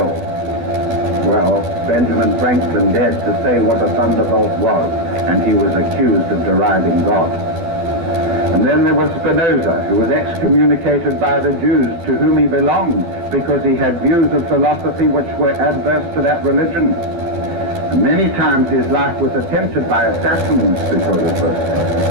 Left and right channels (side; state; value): left; late; 12 ms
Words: Well, Benjamin Franklin dared to say what a thunderbolt was, and he was accused of deriding God. And then there was Spinoza, who was excommunicated by the Jews to whom he belonged because he had views of philosophy which were adverse to that religion. And many times his life was attempted by assassins because of